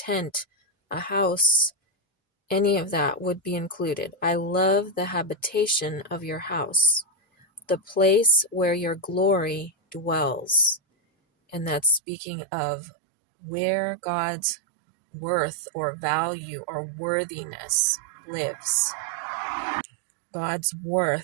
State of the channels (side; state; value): left; drops out; at 12.0 s